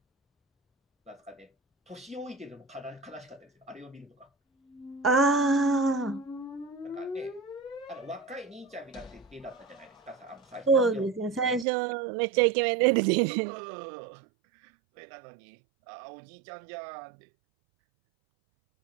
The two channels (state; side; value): drops out; left; at 11.7 s